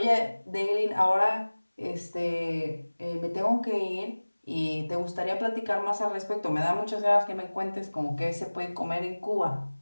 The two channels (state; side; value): inverted; both; correlation -1.00